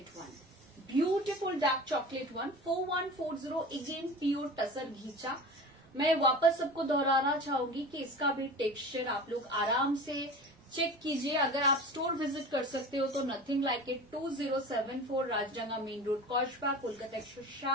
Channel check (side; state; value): both; normal; correlation 0.35